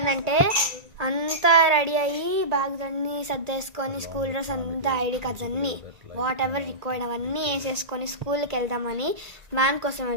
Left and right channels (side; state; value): left; late; 1.9 ms